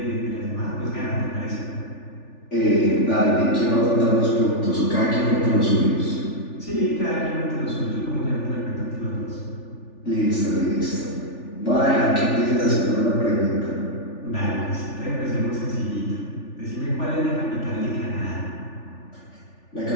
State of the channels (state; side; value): late; right; 3.4 ms